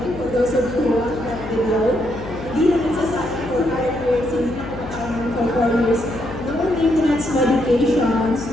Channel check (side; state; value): left; noise; hum, 12 dB below the sound